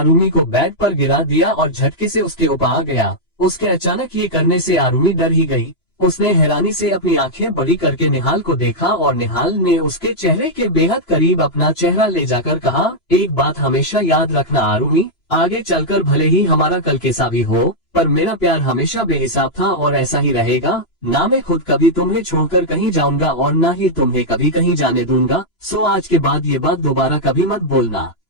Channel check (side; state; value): right; late; 2.9 ms